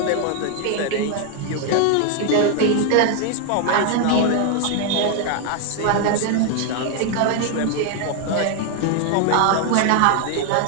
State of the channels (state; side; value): different; both; correlation 0.00